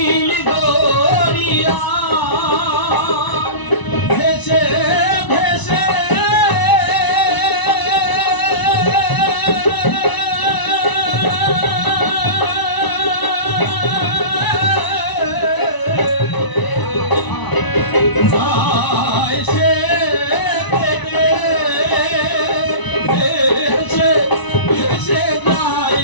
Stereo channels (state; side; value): late; right; 1.0 ms